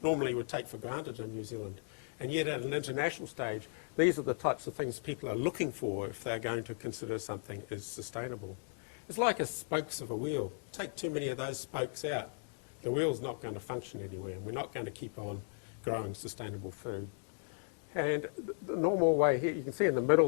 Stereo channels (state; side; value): silent; right; digital silence